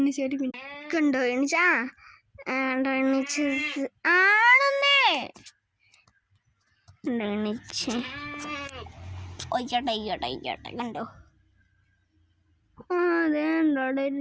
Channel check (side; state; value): both; identical; correlation 1.00